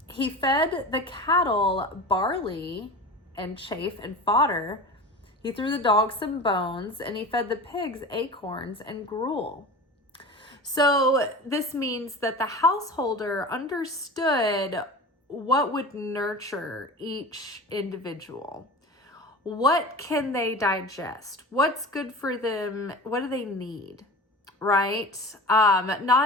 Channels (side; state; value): both; normal; correlation 0.33